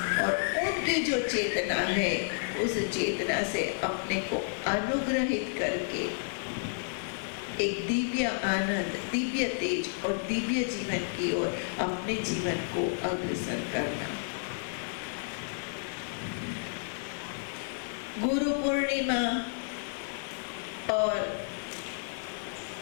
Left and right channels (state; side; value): silent; right; digital silence